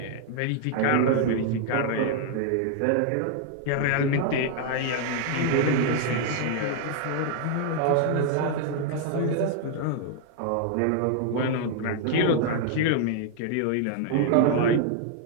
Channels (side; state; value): both; different; correlation 0.00